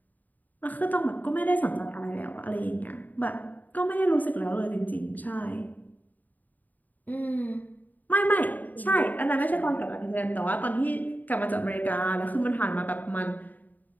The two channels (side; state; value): right; late; 0.082 ms